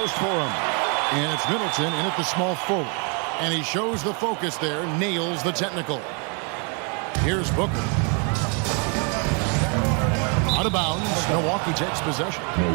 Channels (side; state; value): left; quieter; 35.9 dB